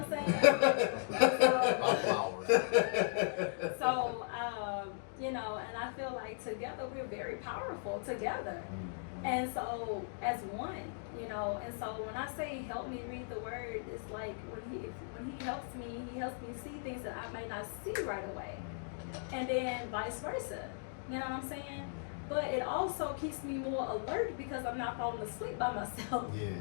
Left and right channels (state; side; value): silent; right; digital silence